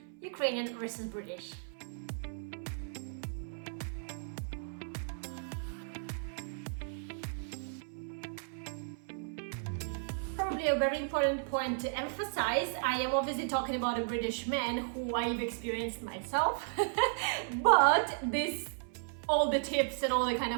Ukrainian versus British. Probably a very important point to emphasize. I am obviously talking about a British man who I've experienced myself, but all the tips and all the kind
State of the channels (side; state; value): left; silent; 55 dB below the other